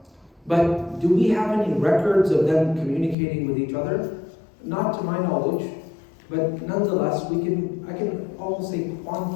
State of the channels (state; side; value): drops out; right; at 3.2 s